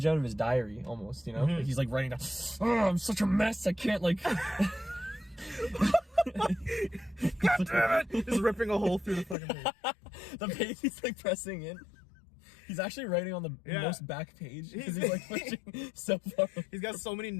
out of his diary almost, you know? Like he's like writing down, oh, I'm such a mess. I can't like. God damn it! Just ripping a hole through the fucking page. The page he's like pressing in. He's actually writing on the most back page because he's like pushing so far. He's got so many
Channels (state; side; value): drops out; right; at 9.3 s